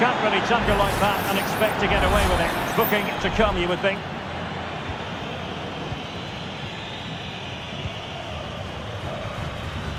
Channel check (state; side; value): identical; both; correlation 1.00